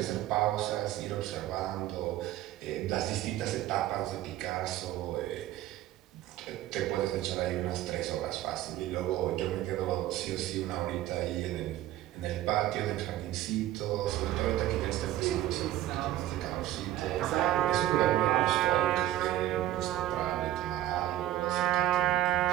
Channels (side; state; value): left; quieter; 13.8 dB